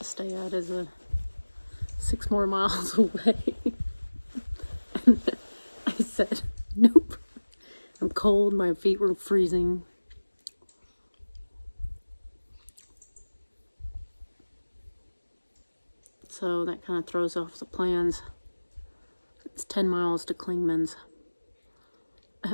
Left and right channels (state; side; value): inverted; both; correlation -1.00